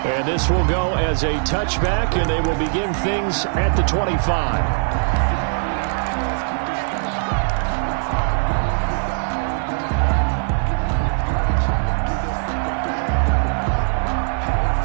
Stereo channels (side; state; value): left; silent; 65 dB below the other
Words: And this will go as a touchback, and they will begin things at the 25.